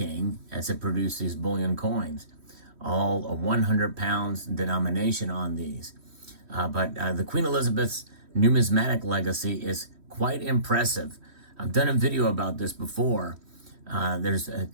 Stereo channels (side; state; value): left; late; 3.1 ms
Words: as it produced these bullion coins. All a 100 pounds denomination on these. But the Queen Elizabeth's numismatic legacy is quite impressive. I've done a video about this before. There's